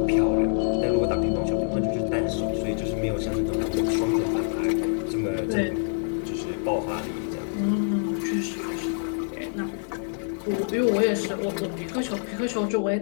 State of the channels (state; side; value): silent; right; 57 dB below the other